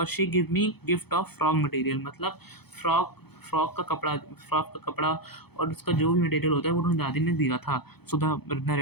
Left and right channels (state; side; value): late; right; 0.97 ms